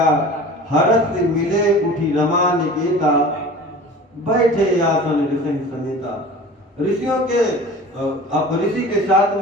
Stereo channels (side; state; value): both; normal; correlation 0.40